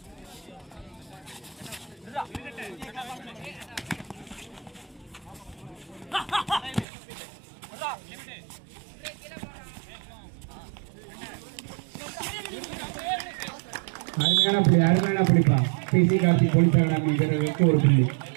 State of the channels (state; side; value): drops out; left; at 6.9 s